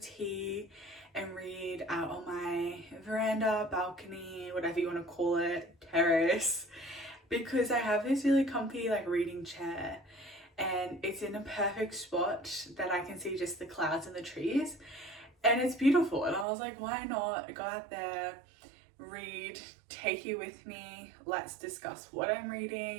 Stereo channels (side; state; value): left; drops out; at 16.4 s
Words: and read out on my veranda, balcony, whatever you want to call it, terrace, because I have this really comfy like reading chair and it's in a perfect spot that I can see just the clouds and the trees and it's beautiful. And I was like, why not go out there, read, take you with me, let's discuss what I'm